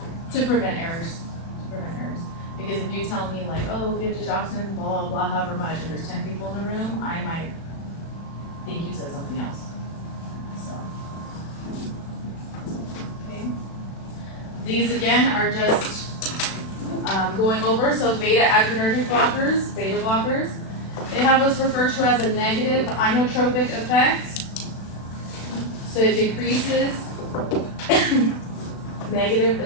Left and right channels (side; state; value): right; late; 36 ms